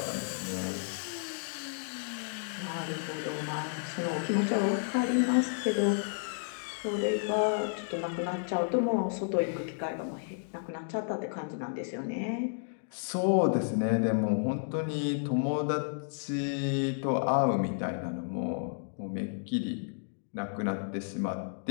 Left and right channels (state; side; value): silent; right; digital silence